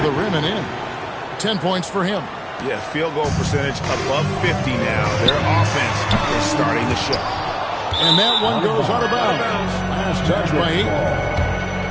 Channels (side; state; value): both; identical; correlation 1.00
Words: the rim and in. 10 points for him. Yeah, field goal percentage above 50 now. Their offense is starting to show. And that one goes out of bounds. Last touch by Ayton.